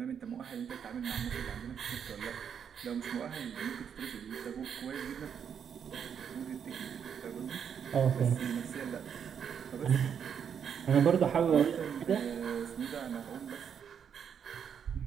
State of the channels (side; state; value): left; quieter; 7.7 dB